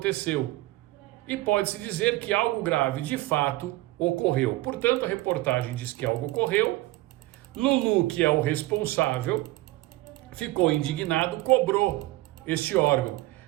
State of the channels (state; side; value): quieter; left; 18.6 dB